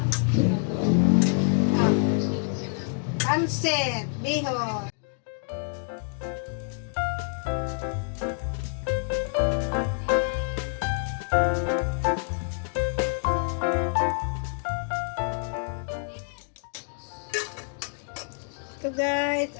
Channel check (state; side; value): silent; right; 60 dB below the other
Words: Pansit, bihon. Ito guys,